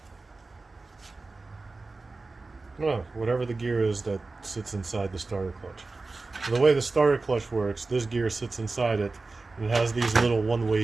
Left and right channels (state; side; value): quieter; left; 3.6 dB